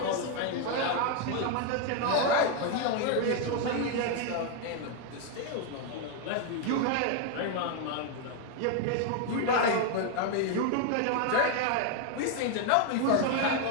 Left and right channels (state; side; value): different; both; correlation 0.01